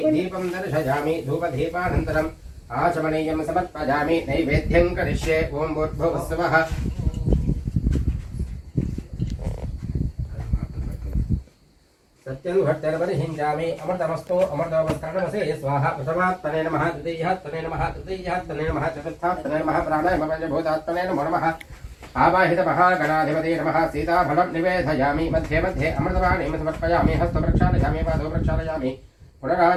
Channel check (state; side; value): identical; both; correlation 1.00